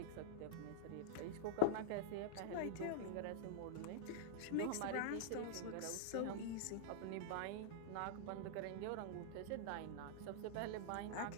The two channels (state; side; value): different; both; correlation -0.02